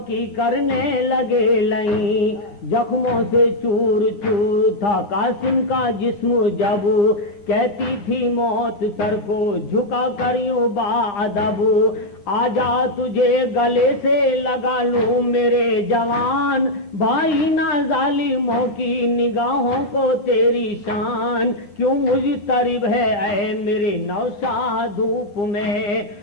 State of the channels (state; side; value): late; right; 9.6 ms